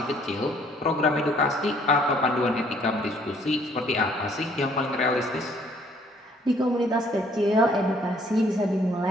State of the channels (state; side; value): normal; both; correlation 0.62